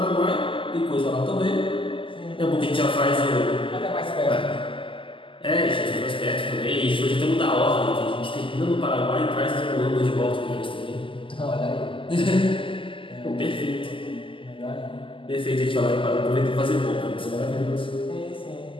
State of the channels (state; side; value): late; right; 0.25 ms